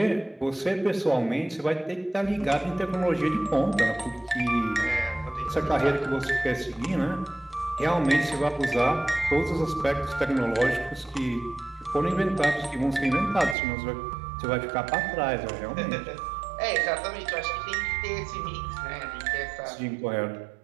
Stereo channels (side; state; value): left; drops out; at 13.6 s